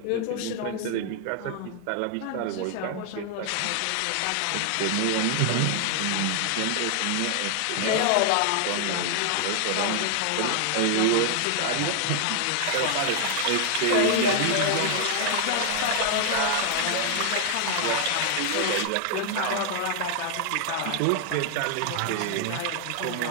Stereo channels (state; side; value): different; both; correlation 0.00